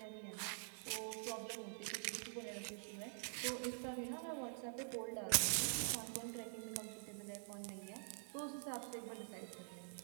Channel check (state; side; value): silent; left; digital silence